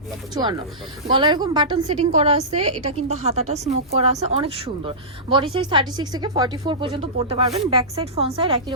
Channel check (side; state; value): both; normal; correlation -0.19